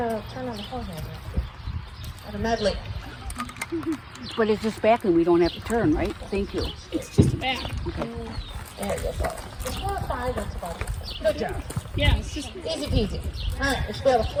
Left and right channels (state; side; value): identical; both; correlation 1.00